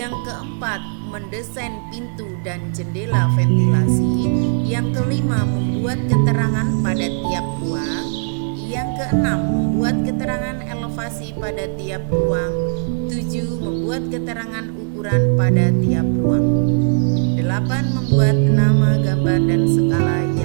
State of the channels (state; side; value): silent; left; digital silence